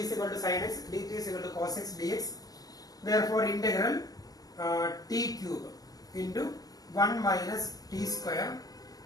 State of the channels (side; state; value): right; late; 0.18 ms